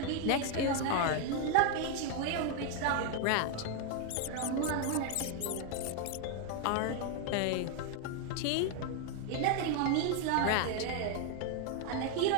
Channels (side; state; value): both; different; correlation 0.01